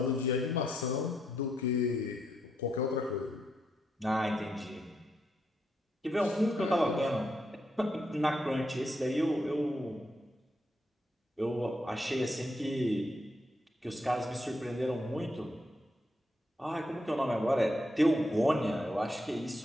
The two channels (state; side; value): normal; both; correlation 0.79